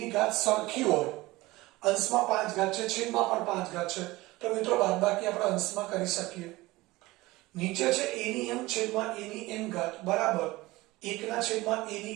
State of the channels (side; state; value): left; quieter; 20.0 dB